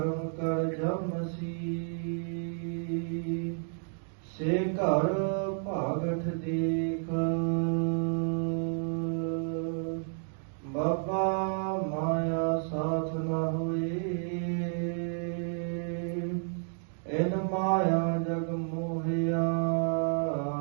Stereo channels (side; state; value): left; silent; digital silence